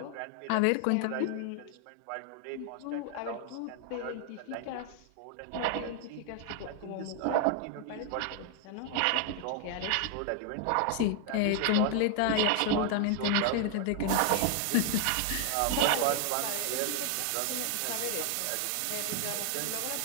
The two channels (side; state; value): both; different; correlation 0.00